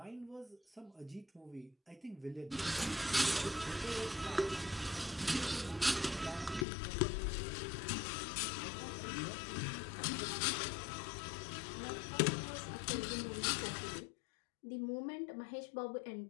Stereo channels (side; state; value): right; drops out; at 6.7 s